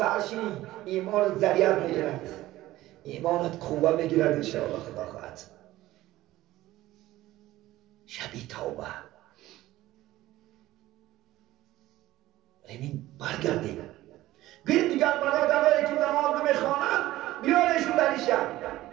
ایمان ذریعت بگیرد ایمانت قوه بگیرد انشاءالله خدا خواهد. شبی توبه ببین برگردیم گوید دیگر برادرهایی که نماز نمیخوانند بیارشون در این شب.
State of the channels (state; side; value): quieter; left; 16.2 dB